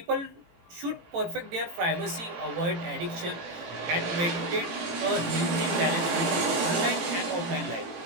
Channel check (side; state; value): left; late; 18 ms